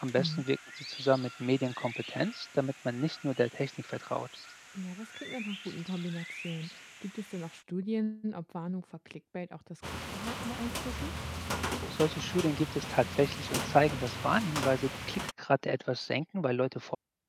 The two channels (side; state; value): both; identical; correlation 1.00